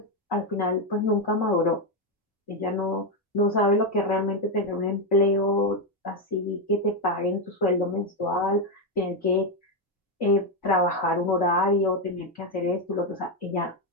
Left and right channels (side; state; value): both; normal; correlation 0.05